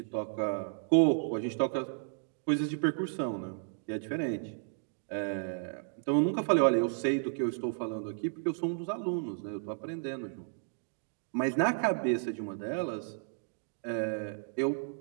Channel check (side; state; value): left; silent; digital silence